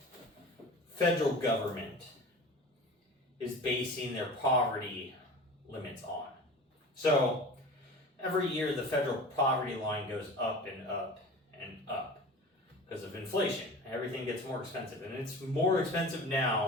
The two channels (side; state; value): both; normal; correlation 0.37